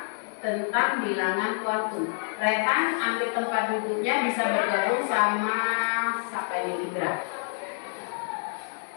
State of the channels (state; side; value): silent; right; 60 dB below the other